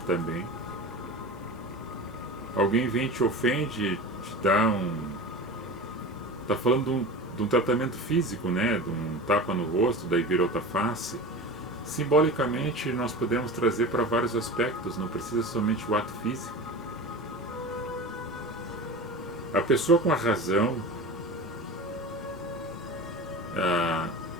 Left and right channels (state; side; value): normal; both; correlation 0.31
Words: também. Alguém vem, te ofende, te dá está falando de um tratamento físico, né? De um tapa no rosto, daí vira outra face. Simbolicamente, nós podemos trazer para vários aspectos, não precisa somente o ato físico. A pessoa com a razão,